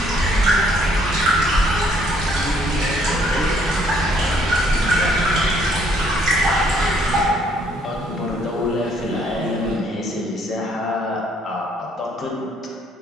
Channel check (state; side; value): normal; both; correlation 0.65